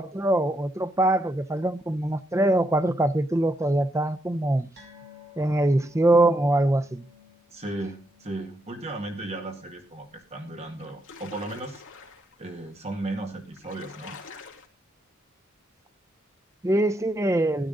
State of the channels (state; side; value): normal; both; correlation 0.79